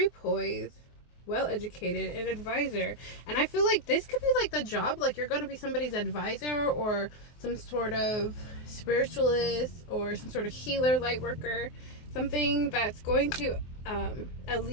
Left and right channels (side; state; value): right; late; 24 ms